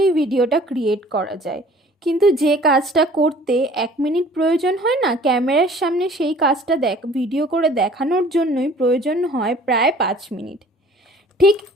ভিডিওটা ক্রিয়েট করা যায়। কিন্তু যে কাজটা করতে 1 মিনিট প্রয়োজন হয় না, ক্যামেরার সামনে সেই কাজটা ভিডিও করে দেখানোর জন্যই প্রয়োজন হয় প্রায় 5 মিনিট। ঠিক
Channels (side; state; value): both; normal; correlation 0.51